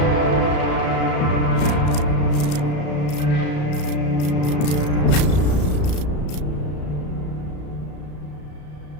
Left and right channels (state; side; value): late; right; 34 ms